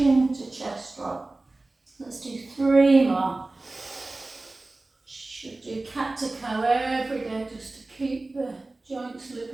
to chest drop. Let's do 3 more. Should do cat to cow every day just to keep the joints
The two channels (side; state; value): left; quieter; 3.1 dB